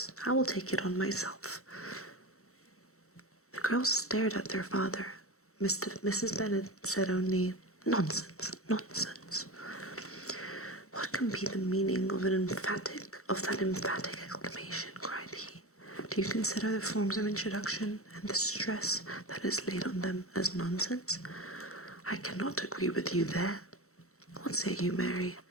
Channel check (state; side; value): late; right; 0.64 ms